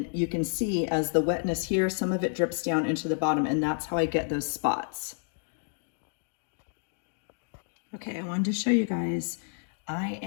you can see as the wetness here, some of it drips down into the bottom, and that's how I get those spots. Okay, I wanted to show you guys. I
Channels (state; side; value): silent; right; 56 dB below the other